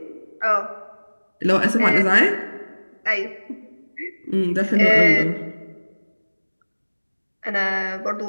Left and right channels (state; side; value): inverted; both; correlation -1.00